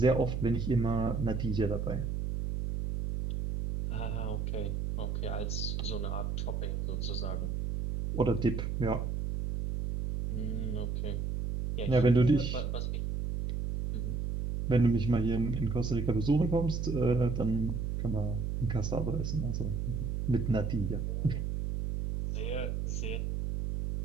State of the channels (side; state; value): right; noise; hum, 1 dB below the sound